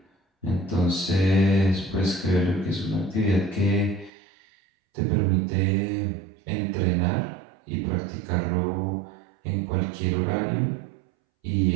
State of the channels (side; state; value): left; drops out; at 4.1 s